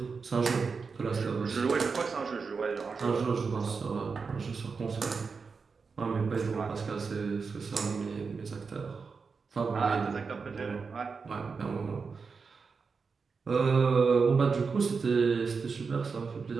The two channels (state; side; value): quieter; left; 5.0 dB